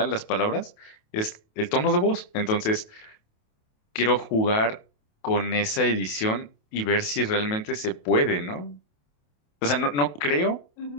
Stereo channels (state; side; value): late; right; 28 ms